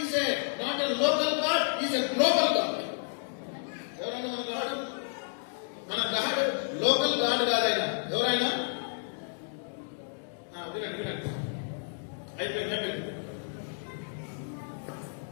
is a not a local God, is a global God. ఎవరైనా మన గాడ్, మన గాడ్ లోకల్ గాడ్ కాదైనా ఎవరైనా వినండి వినండి అయిపోయింది.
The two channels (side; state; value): right; silent; digital silence